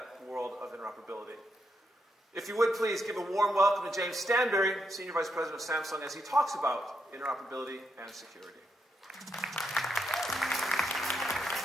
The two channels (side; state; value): both; normal; correlation 0.80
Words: world of interoperability. If you would please give a warm welcome to James Stanberry, Senior Vice President of Samsung, as he talks about interoperability and security.